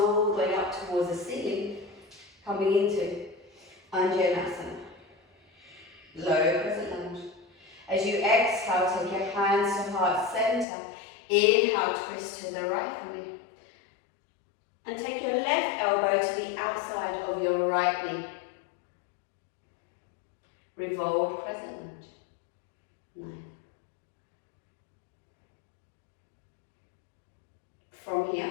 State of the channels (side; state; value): right; drops out; at 10.7 s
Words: the way up towards the ceiling, coming into Vinyasa. Low crescent lunge. As you exhale, take your hands to heart centre. Inhale, twist to the right for me. And take your left elbow to the outside of your right knee. Revolved crescent lunge. 9. From here,